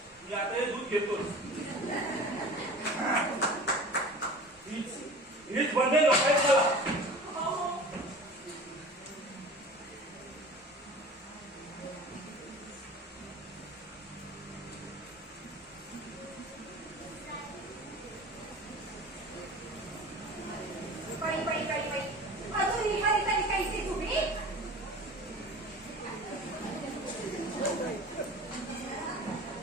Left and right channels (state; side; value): normal; both; correlation 0.38